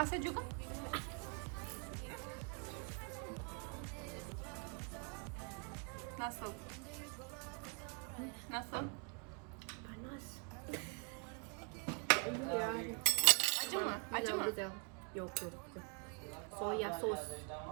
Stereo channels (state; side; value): quieter; left; 37.4 dB